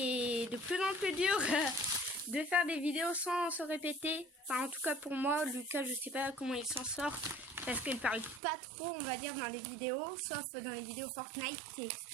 de plus en plus dur de faire des vidéos sans se répéter. Enfin en tout cas pour moi, Lucas je sais pas comment il s'en sort, parce qu'il parle pas trop on va dire dans les vidéos, sauf dans les vidéos Fortnite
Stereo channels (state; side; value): drops out; left; at 8.4 s